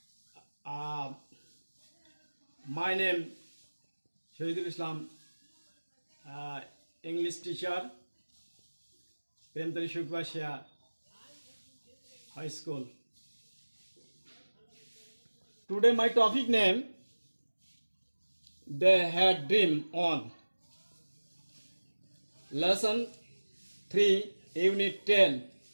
My name Shahidul Islam, English teacher, Premtari Shukbashia High School. Today my topic name, they had dream on. Lesson 3, Unit 10,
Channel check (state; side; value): inverted; both; correlation -1.00